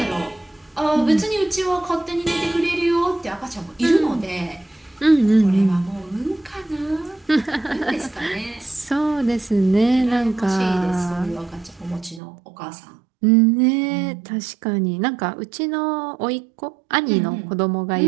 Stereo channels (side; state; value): left; drops out; at 12.2 s